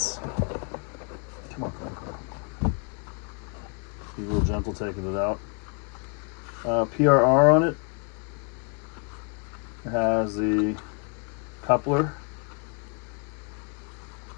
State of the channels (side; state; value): right; quieter; 37.0 dB